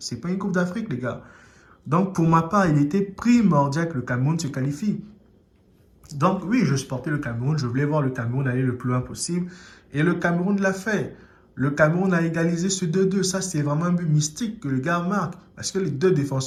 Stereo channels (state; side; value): identical; both; correlation 1.00